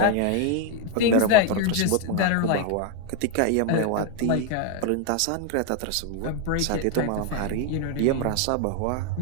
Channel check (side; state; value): both; different; correlation 0.01